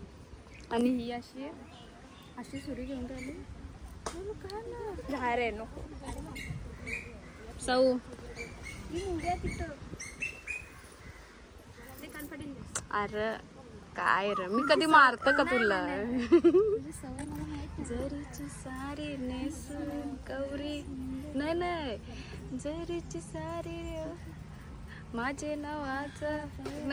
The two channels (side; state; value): both; identical; correlation 1.00